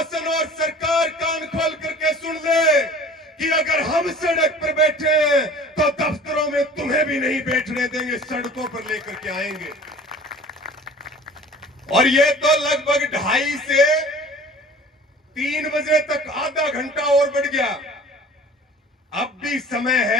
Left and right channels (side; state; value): both; normal; correlation 0.45